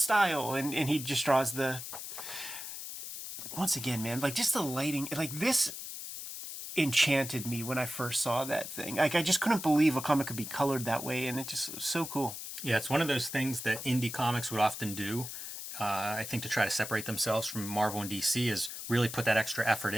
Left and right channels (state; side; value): noise; left; hiss, 8 dB below the sound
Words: and he just draws once again, man, like just the lighting, like this enchanted me when I first saw that thing. Like I just couldn't believe a comic could be colored that way, and it just was so cool. Yeah, it's one of those things that indie comics would often do. I think to try to separate themselves from Marvel and DC is really put that extra effort